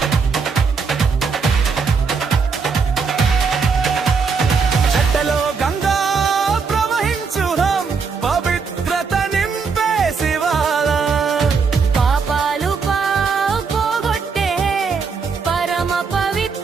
చెట్టలో గంగా ప్రవహించుదాం పవిత్రత నింపే శివాల పాపాలు పోగొట్టే పరమ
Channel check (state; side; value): quieter; left; 5.3 dB